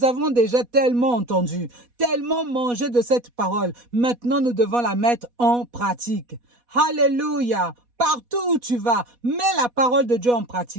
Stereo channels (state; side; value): late; left; 4.1 ms